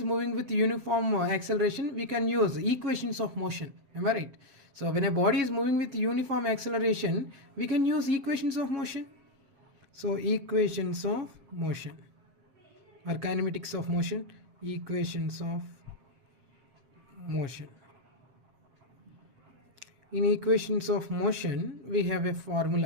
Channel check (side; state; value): left; late; 7.6 ms